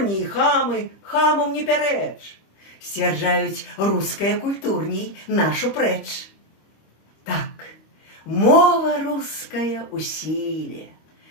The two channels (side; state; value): right; late; 25 ms